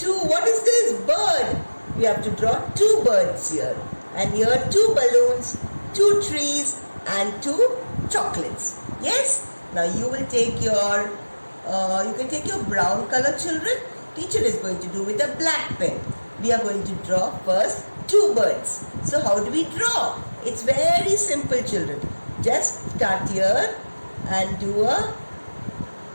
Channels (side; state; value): both; inverted; correlation -1.00